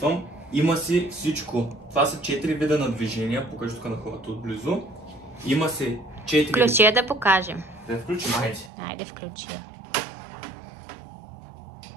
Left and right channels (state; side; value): drops out; left; at 8.7 s